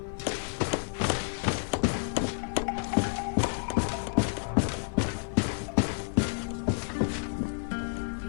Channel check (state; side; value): silent; right; digital silence